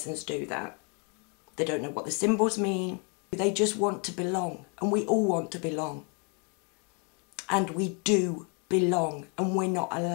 do that. They don't know what the symbols mean. They just want to belong, and we all want to belong. And we do belong, and we're not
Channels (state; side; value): quieter; right; 36.3 dB